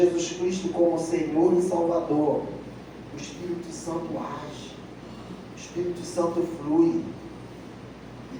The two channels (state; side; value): identical; both; correlation 1.00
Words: Cristo como Senhor e Salvador, o Espírito Santo age, o Espírito Santo flui, e